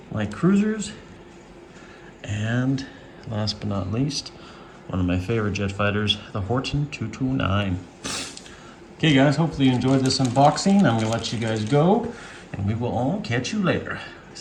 light cruisers. And last but not least, one of my favorite jet fighters, the Horten 229. Okay guys, hopefully you enjoyed this unboxing. I'm gonna let you guys go and we will all catch you later.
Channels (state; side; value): identical; both; correlation 1.00